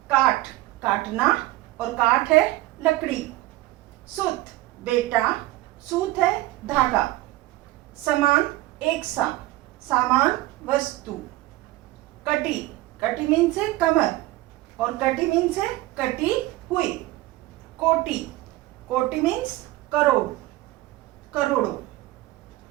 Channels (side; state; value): left; quieter; 17.7 dB